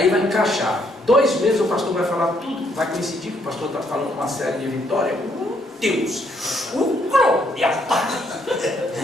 vai encaixar. 2 meses o pastor vai falar tudo, vai coincidir que o pastor está falando uma série de vitória. Deus! Glória!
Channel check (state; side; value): normal; both; correlation 0.71